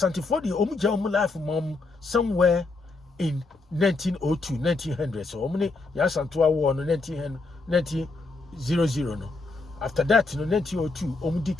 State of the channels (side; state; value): right; quieter; 3.5 dB